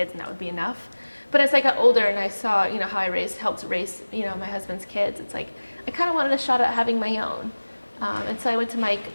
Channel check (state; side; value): inverted; both; correlation -1.00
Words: and that would be enough. But as I got older and I saw, how I helped raise, my husband's kids, it's like I kind of wanted a shot at having my own. And so I went to Mike,